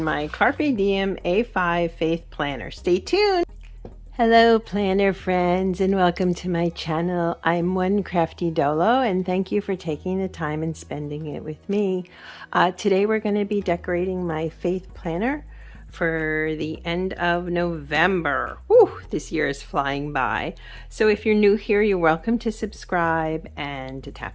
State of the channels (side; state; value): both; identical; correlation 1.00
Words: my Carpe Diem A5 Faith Planner. Stay tuned! Hello Planner Friends and welcome to my channel. I'm One Crafty Dolo and thank you for taking the time and spending it with me. Today we're going to be decorating my Faith Planner for the end of November. Whew, this year is flying by. So if you're new here, you're welcome to subscribe and to